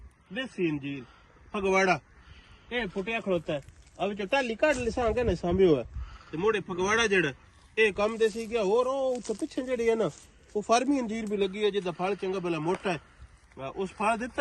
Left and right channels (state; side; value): identical; both; correlation 1.00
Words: ਦੇਸੀ ਅੰਜੀਰ ਫਗਵਾੜਾ ਇਹ ਫੁੱਟਿਆ ਖੜੋਤਾ ਹੈ ਆ ਵਿੱਚ ਟਾਲੀ ਕੱਢ ਲਿਸਾਂਗੇ ਨਾ ਸਾਂਭਿਓ ਹੈ ਤੇ ਮੋੜੇ ਫਗਵਾੜਾ ਜਿਹੜਾ ਇਹ ਕੰਮ ਦੇ ਸੀ ਗਿਆ ਹੋਰ ਉਹ ਉੱਥੇ ਪਿੱਛੇ ਜਿਹੜੀ ਹੈ ਨਾ ਉਹ ਫਾਰਮੀ ਅੰਜੀਰ ਵੀ ਲੱਗੀ ਹੈ ਜਿਹਦਾ ਫਲ ਚੰਗਾ ਭਲਾ ਮੋਟਾ ਹੈ ਉਸ ਫਲ